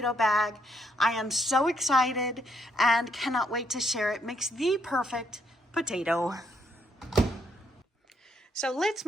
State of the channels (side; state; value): both; normal; correlation 0.73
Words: bag. I am so excited and cannot wait to share it. Makes the perfect potato. So let's